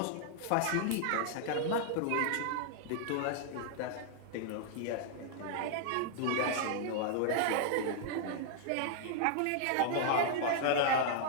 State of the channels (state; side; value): different; both; correlation -0.01